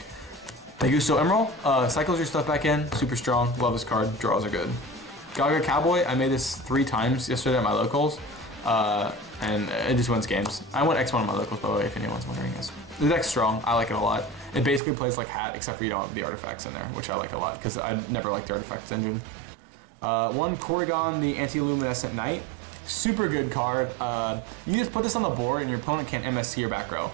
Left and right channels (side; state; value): left; drops out; at 14.8 s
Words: Augusto Emerald, cycles your stuff back in, super strong, love this card, draws are good. Gaga Cowboy, I made this 3 times yesterday at my locals, and it just wins games. I went X1 at my locals, by the way, if anyone's wondering. The deck's strong, I like it a lot. It basically plays like Hat, except for you don't have the artifacts in there, which I like a lot, because I never liked the artifacts engine. 1 Corrigan, the Anti-Luminescent Knight. Super good card. You just put this on the board and your opponent can't MST your back row.